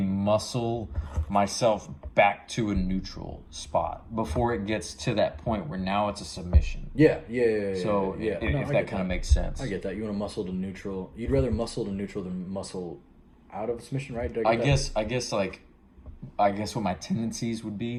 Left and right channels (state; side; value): identical; both; correlation 1.00